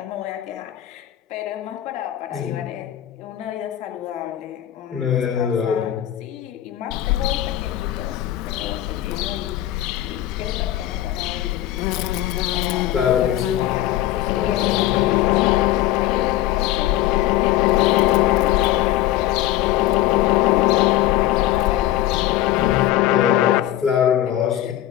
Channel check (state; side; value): quieter; right; 13.5 dB